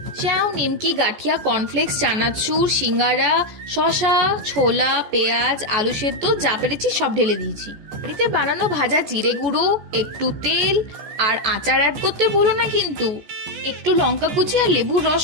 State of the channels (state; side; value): late; left; 14 ms